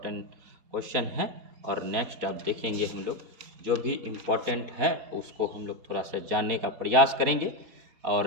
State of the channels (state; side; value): late; left; 4.1 ms